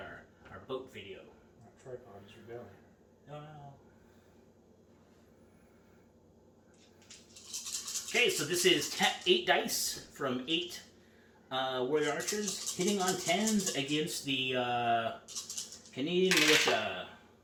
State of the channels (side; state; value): both; identical; correlation 1.00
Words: boat video. Tripod is rebelling. No. Okay, so this is 8 dice from 8 warrior archers hitting on 10s against the Canadian militia.